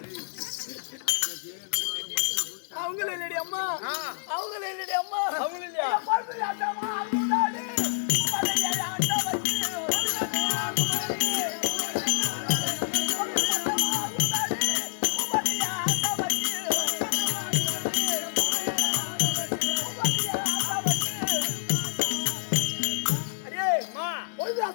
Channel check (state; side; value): silent; right; digital silence